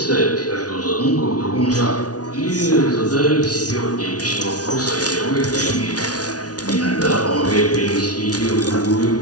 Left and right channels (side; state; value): right; late; 0.68 ms